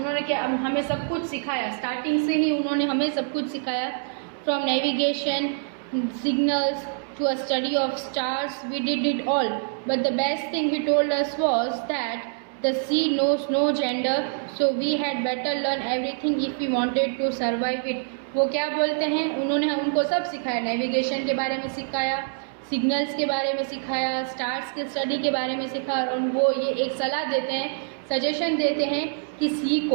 क्या हमें सब कुछ सिखाया, स्टार्टिंग से ही उन्होंने हमें सब कुछ सिखाया। from navigation, signals to a study of stars. We did it all. But the best thing he told us was that the sea knows no gender, so we had better learn everything if we wanted to survive it. वो क्या बोलते हैं, उन्होंने उनको सब सिखाया, navigation के बारे में सिखाया, सिग्नल्स के बारे में सिखाया, स्टार्स के स्टडी के बारे में सिखाया, और वो ये एक सलाह देते हैं, सजेशन देते हैं कि सी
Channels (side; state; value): left; silent; 61 dB below the other